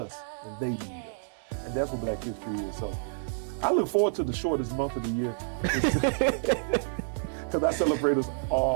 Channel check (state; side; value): silent; left; digital silence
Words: and they need us, and that's what Black history is. So I look forward to the shortest month of the year because I celebrate us